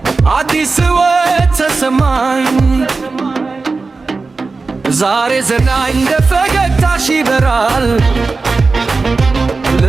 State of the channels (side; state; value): left; quieter; 4.0 dB